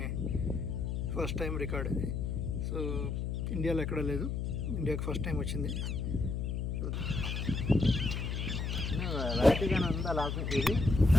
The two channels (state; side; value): noise; left; hum, 1 dB below the sound